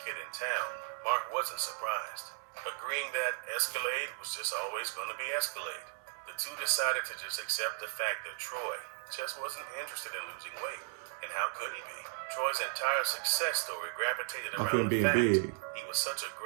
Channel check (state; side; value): silent; left; 54 dB below the other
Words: kid in town, Mark wasn't surprised, agreeing that Escalade was just always going to be Escalade. The two decided to just accept the fact that Troy just wasn't interested in losing weight. And how could he be? Troy's entire success story gravitated Off around him the being fact big. he was such a